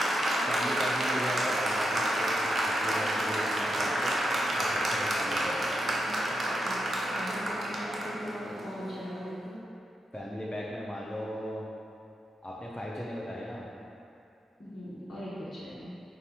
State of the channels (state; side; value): normal; both; correlation 0.85